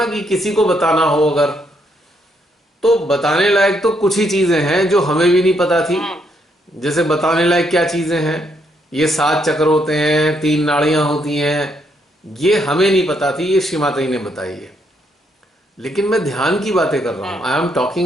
कि किसी को बताना हो अगर, तो बताने लायक तो कुछ ही चीजें हैं जो हमें भी नहीं पता थी। जैसे बताने लायक क्या चीजें हैं, ये 7 चक्र होते हैं, 3 नाड़ियां होती हैं, ये हमें नहीं पता थी, ये श्री माता जी ने बताई है। लेकिन मैं ध्यान की बातें कर रहा हूं, I am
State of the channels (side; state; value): both; normal; correlation 0.74